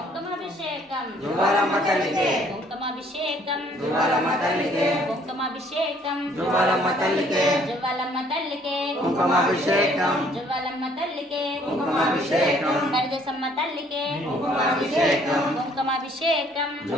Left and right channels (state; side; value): normal; both; correlation 0.61